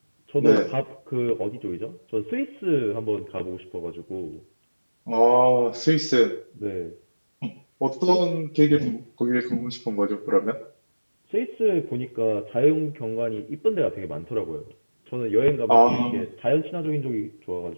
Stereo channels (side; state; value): both; inverted; correlation -1.00